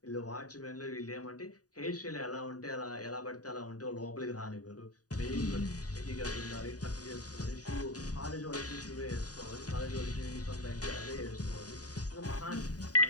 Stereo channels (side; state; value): right; late; 0.68 ms